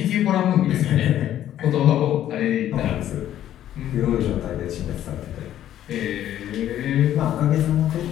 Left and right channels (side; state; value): right; quieter; 11.8 dB